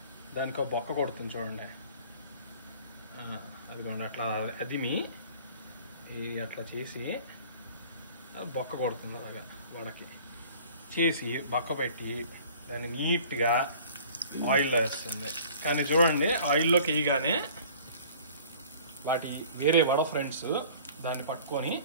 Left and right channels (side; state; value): both; inverted; correlation -0.49